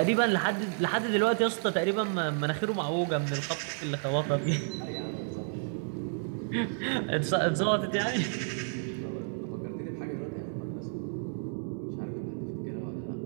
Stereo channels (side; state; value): left; silent; 57 dB below the other